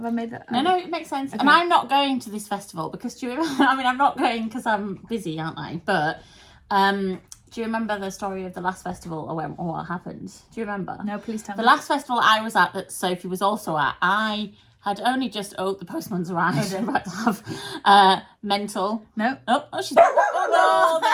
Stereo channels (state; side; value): identical; both; correlation 1.00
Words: I made that? No, it makes sense. Okay. And I'm not going to this festival because do you remember? I mean, I'm not going because I'm busy, aren't I? But do you remember the story of the last festival or what happened? Do you remember? No, please tell The me. last festival I was at that Sophie was also at, I had only just, the postman's arrived. I'm about to have mental. No. Oh, she's, oh